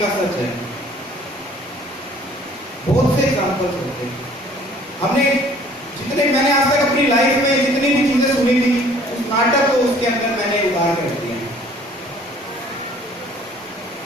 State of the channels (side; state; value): both; normal; correlation 0.54